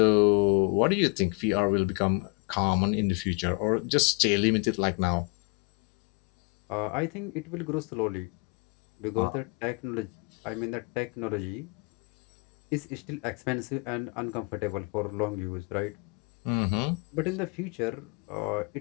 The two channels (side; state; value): right; quieter; 31.5 dB